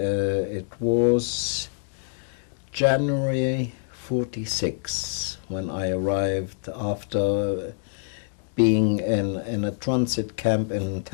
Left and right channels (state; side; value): silent; right; digital silence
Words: was January 46, when I arrived after being in a transit camp in